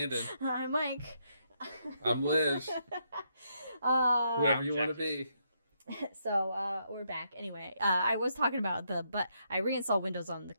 I'm Mike. I'm Liz. Whoever you want to be. So we're back. Anyway, I was talking about but I reinstalled Windows on the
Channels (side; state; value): both; inverted; correlation -0.77